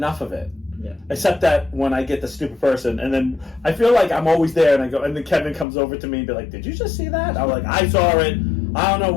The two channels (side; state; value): right; drops out; at 5.7 s